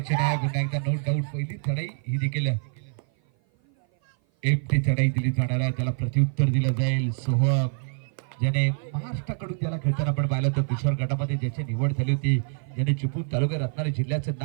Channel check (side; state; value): left; silent; 56 dB below the other